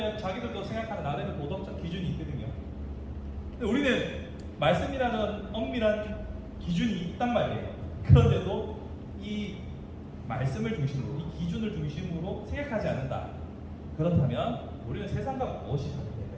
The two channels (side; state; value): both; identical; correlation 1.00